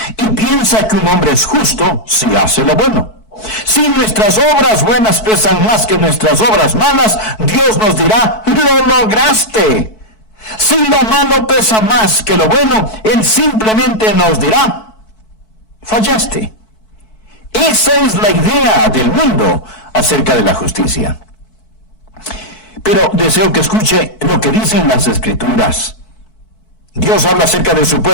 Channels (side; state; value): right; late; 4.6 ms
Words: Y piensa que un hombre es justo si hace lo bueno. Si nuestras obras buenas pesan más que nuestras obras malas, Dios nos dirá, lo lograste. Si lo malo pesa más que lo bueno, Él simplemente nos dirá, fallaste. Esa es la idea del mundo acerca de la justicia. Pero deseo que escuche lo que dicen las Escrituras. Dios habla acerca de su